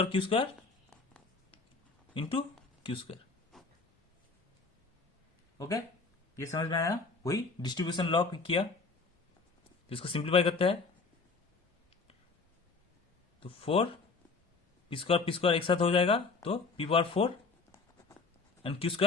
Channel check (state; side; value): quieter; right; 4.2 dB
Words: Q square into Q square. Okay, ये समझ में आया? वही डिस्ट्रीब्यूशन लॉ किया, इसको सिंप्लीफाई करते हैं। तो 4 पी स्क्वायर एक साथ हो जाएगा, तो P power 4 and Q